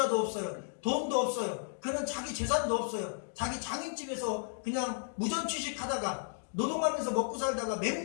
없어요. 돈도 없어요. 그는 자기 재산도 없어요. 자기 장인집에서 그냥 무전취식하다가 노동하면서 먹고 살다가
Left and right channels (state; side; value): silent; right; digital silence